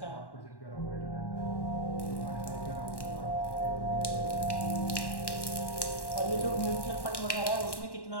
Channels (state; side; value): late; right; 1.1 ms